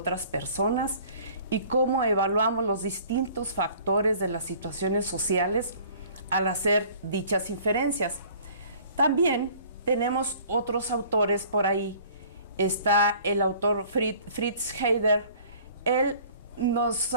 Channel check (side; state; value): both; inverted; correlation -0.51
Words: personas y cómo evaluamos los distintos factores de las situaciones sociales al hacer dichas inferencias. También tenemos otros autores por ahí. Está el autor Fritz Heider. Él nos